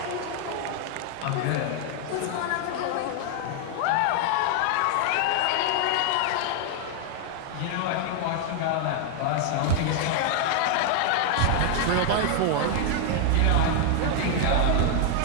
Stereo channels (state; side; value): different; both; correlation 0.00